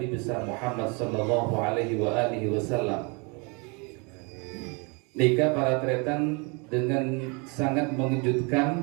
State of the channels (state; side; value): quieter; left; 31.7 dB